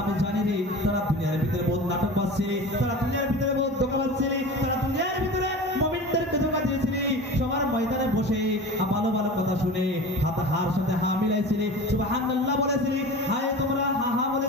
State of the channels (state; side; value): normal; both; correlation 0.34